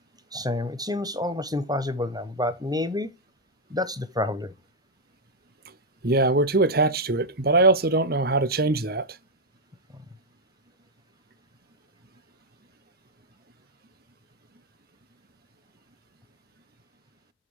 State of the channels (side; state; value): both; normal; correlation 0.02